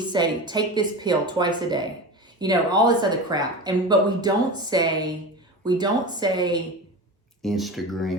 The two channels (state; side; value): normal; both; correlation 0.28